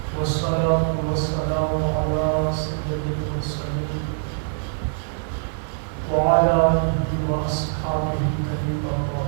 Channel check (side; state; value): left; silent; digital silence